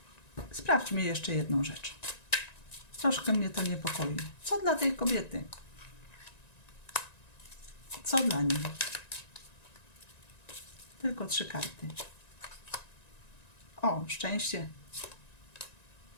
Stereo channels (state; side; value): late; right; 1.9 ms